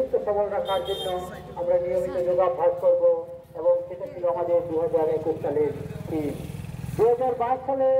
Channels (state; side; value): identical; both; correlation 1.00